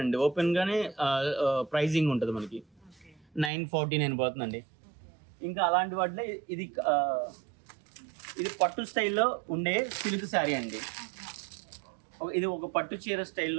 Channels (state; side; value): drops out; left; at 3.5 s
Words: అండి, ఓపెన్గానే ప్రైజింగ్ ఉంటుంది మనకి. 949 పోతుందండి. ఇంకా అలాంటి వాటిలో ఇది పట్టు స్టైల్లో ఉండే సిల్క్ శారీ అండి. ఇది ఒక పట్టు చీర